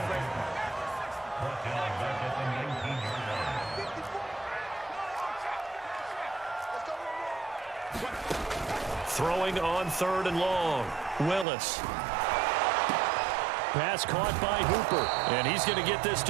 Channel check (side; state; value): left; drops out; at 11.5 s